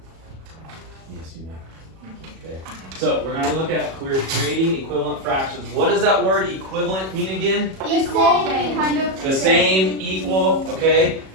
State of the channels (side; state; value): left; late; 37 ms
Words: you may. Okay. So we're going to look at creating equivalent fractions. What does that word equivalent mean again? Equal, kind of. The same, equal, okay?